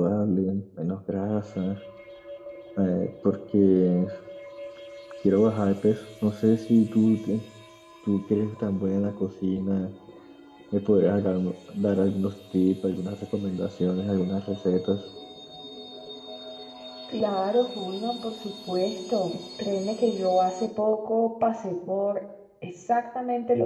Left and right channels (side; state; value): both; identical; correlation 1.00